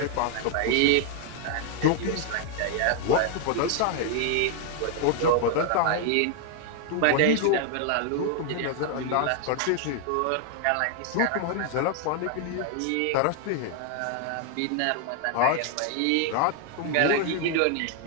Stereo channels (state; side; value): different; both; correlation 0.00